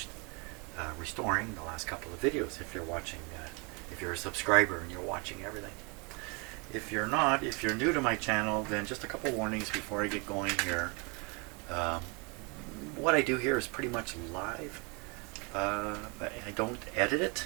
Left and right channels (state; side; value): quieter; left; 31.5 dB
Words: restoring the last couple of videos. If you're watching, if you're a subscriber and you're watching everything. If you're not, if you're new to my channel, then just a couple warnings before I get going here. What I do here is pretty much live. I don't edit it